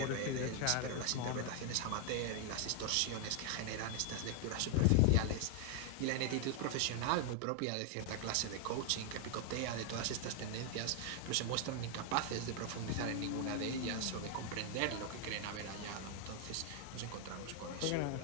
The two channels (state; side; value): different; both; correlation 0.00